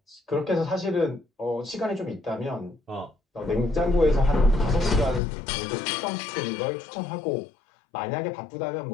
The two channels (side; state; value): right; drops out; at 5.2 s